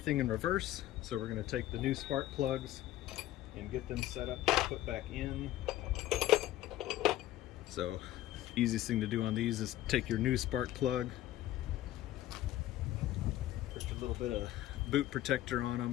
in reverse. So we're gonna take the new spark plugs and get them set up to put back in. So easiest thing to do on these is take your new spark plug, a little bit of boot protector on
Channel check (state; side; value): quieter; right; 14.2 dB